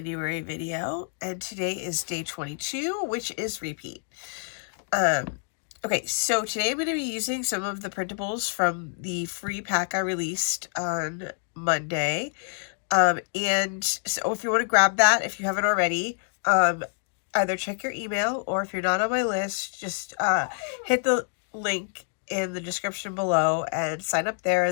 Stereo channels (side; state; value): right; silent; digital silence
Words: video, and today is day 22, which is repeat. Okay, so today I'm going to be using some of the printables from the free pack I released on Monday, and so if you want to grab that, if you haven't already, either check your email, or if you're not on my list, just hit the link in the description below and sign up there,